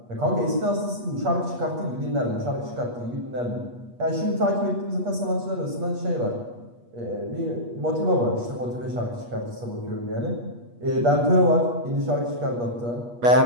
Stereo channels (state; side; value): late; left; 8.4 ms